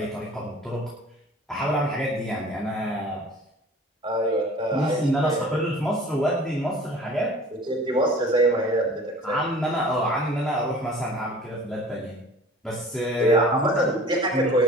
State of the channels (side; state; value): both; normal; correlation 0.45